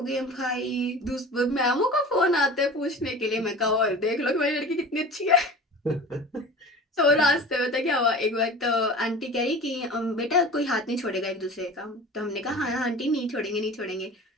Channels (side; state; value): both; normal; correlation 0.37